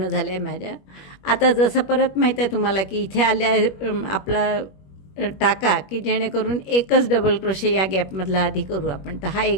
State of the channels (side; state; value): right; late; 21 ms